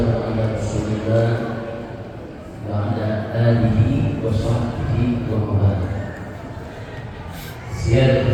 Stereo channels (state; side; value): identical; both; correlation 1.00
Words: ala Rasulillah wa ala alihi wa sahbihi wa mawala. Siyar